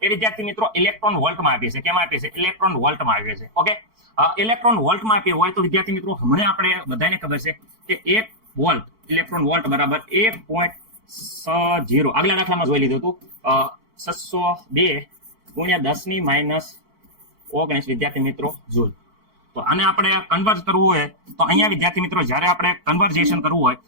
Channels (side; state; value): left; late; 4.5 ms